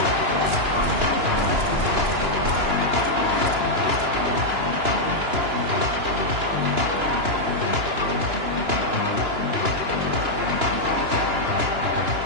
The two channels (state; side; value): late; left; 2.9 ms